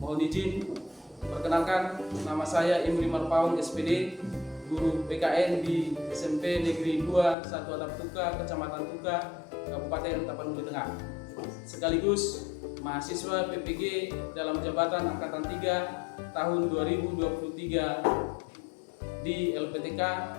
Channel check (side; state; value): right; drops out; at 7.4 s